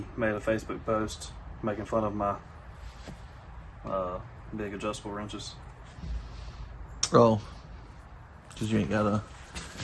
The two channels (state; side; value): identical; both; correlation 1.00